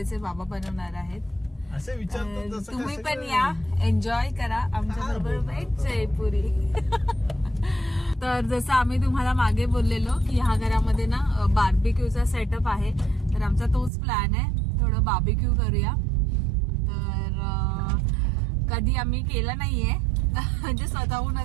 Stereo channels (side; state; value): left; drops out; at 13.9 s